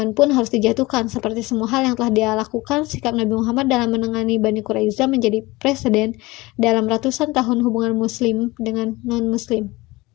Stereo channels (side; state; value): right; quieter; 21.4 dB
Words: pun harus dijatuhkan. Seperti semua hal yang telah dia lakukan, sikap Nabi Muhammad dalam menangani Bani Quraiza menjadi presiden dalam ratusan tahun hubungan Muslim dengan non-Muslim.